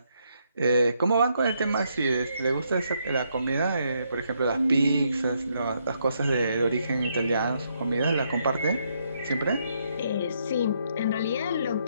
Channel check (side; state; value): both; inverted; correlation -0.75